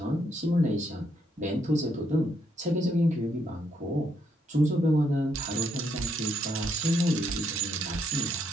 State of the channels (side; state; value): both; normal; correlation 0.75